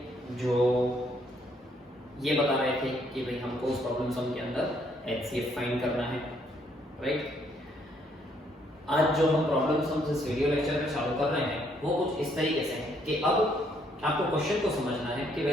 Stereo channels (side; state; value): both; normal; correlation 0.69